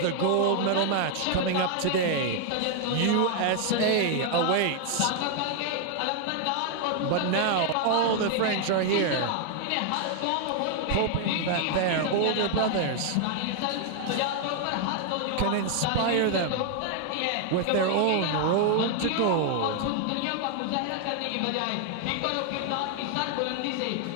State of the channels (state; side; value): different; both; correlation 0.00